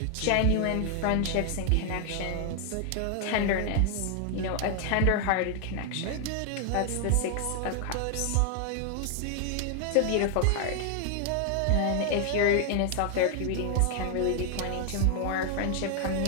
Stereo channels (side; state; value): both; different; correlation 0.00